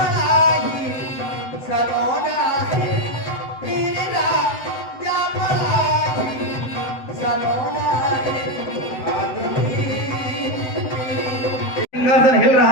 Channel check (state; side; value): late; right; 7.8 ms